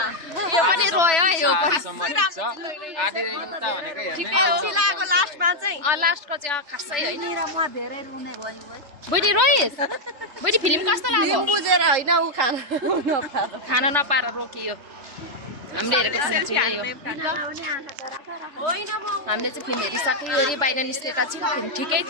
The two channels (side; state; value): left; late; 3.3 ms